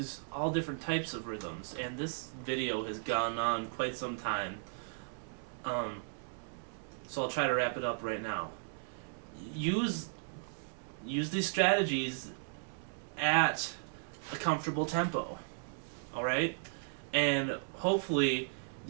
all different types of rhythms, and this video has gone on quite some time. So I'll try to wrap it up right now. Use these strategies at a comfortable tempo, alright? And hopefully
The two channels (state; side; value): silent; left; digital silence